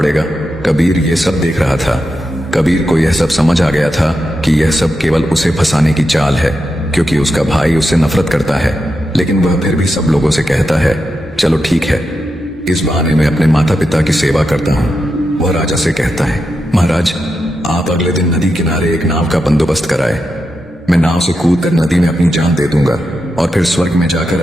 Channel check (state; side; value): normal; both; correlation 0.87